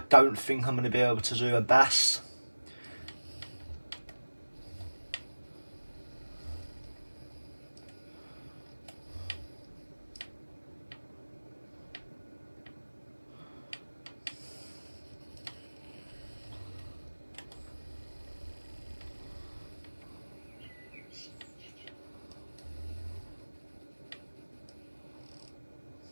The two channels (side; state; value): both; inverted; correlation -1.00